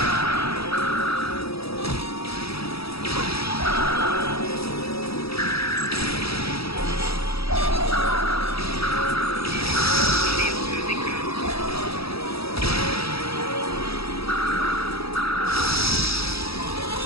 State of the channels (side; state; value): right; late; 0.77 ms